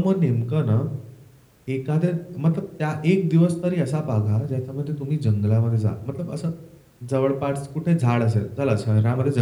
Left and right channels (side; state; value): both; identical; correlation 1.00